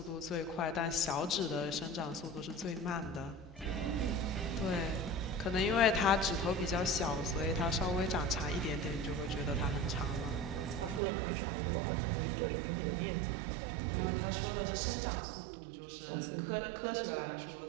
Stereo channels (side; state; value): left; drops out; at 11.0 s